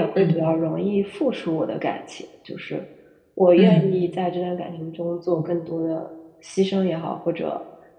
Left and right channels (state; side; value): identical; both; correlation 1.00